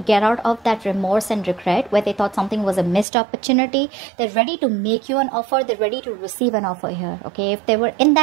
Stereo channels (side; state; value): left; drops out; at 3.1 s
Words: out of that remorse and regret where they thought something was a missed opportunity. They're ready to make you an offer. They're ready to receive an offer here. Okay, if they were in